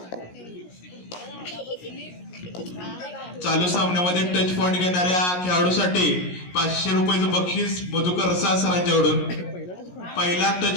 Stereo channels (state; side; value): late; right; 17 ms